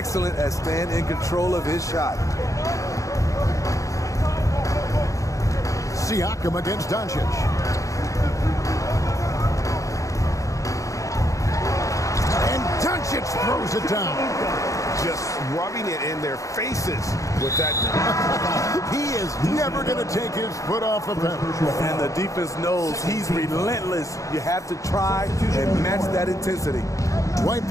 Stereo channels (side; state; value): right; late; 0.16 ms